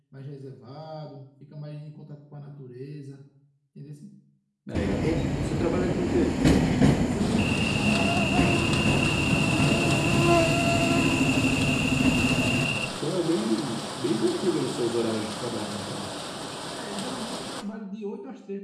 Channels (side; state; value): both; identical; correlation 1.00